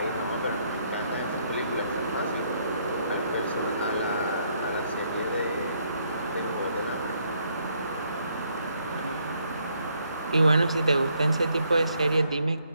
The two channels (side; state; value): both; inverted; correlation -0.71